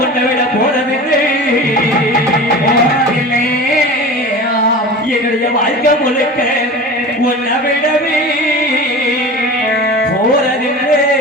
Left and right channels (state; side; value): normal; both; correlation 0.34